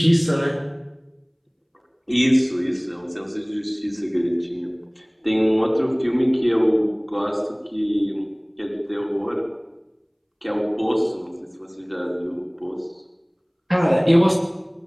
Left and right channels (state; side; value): identical; both; correlation 1.00